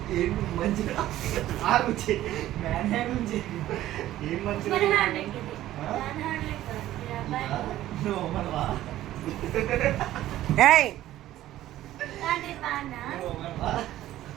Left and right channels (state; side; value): quieter; left; 14.1 dB